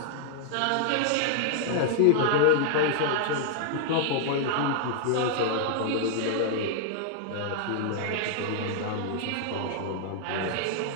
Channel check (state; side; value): different; both; correlation 0.00